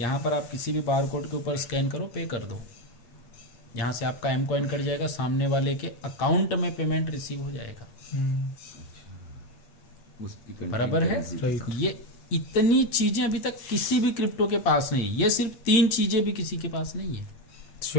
पर आप किसी भी बार कोड के ऊपर स्कैन करो, पे कर दो, यहाँ से आपका एम कॉइन कट जाएगा, सामने वाले के अकाउंट में पेमेंट रिसीव हो जाएगा, उसकी बराबर है। राइट। ये इतनी चीजें अभी तक किसी भी क्रिप्टो के पास नहीं है। ये सिर्फ 3 चीजें भी किसी के पास नहीं है,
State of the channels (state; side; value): late; right; 8.7 ms